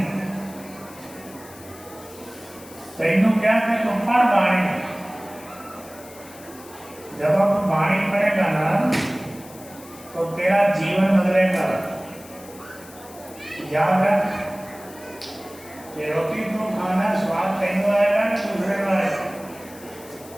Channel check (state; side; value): noise; left; hiss, 20 dB below the sound